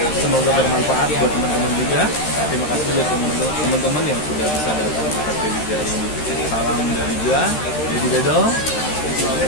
Semoga bermanfaat buat teman-teman juga. Terima kasih buat teman-teman yang sudah bisa datang ke kredit hari ini. Salam dari gua, Dedi Bedol,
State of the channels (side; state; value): right; late; 13 ms